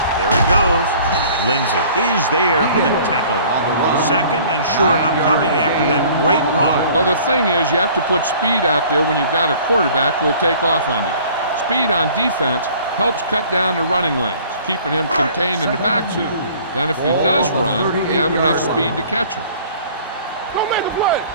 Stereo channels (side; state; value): both; inverted; correlation -0.51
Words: There he goes. Lindsey is there for the tackle. 2nd and short upcoming after that great run. Well, the thing is, you have to put speed out there when you've got a quarterback who will take off on you. Speed on defense helps cut down the running lanes, keeping him contained in the backfield. Then if he does run, you have enough speed to catch him. Don't make a play.